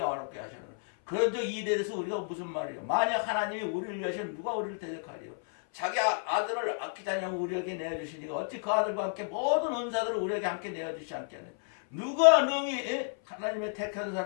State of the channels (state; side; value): silent; right; 57 dB below the other